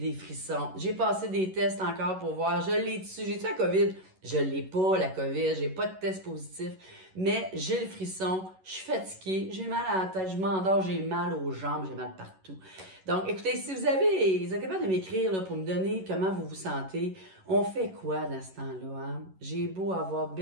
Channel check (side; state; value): left; late; 11 ms